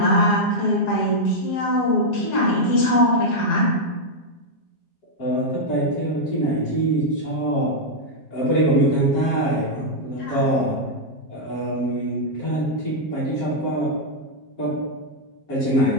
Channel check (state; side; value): late; right; 7.4 ms